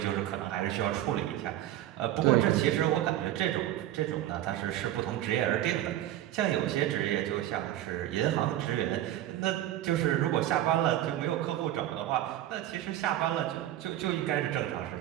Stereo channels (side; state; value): left; quieter; 13.1 dB